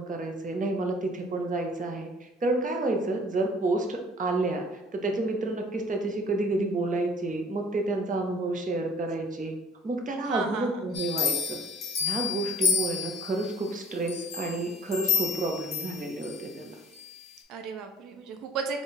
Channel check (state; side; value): normal; both; correlation 0.54